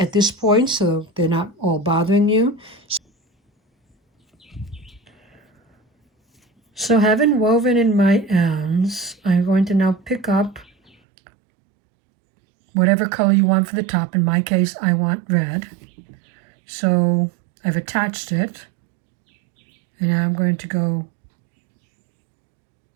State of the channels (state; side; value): drops out; left; at 10.9 s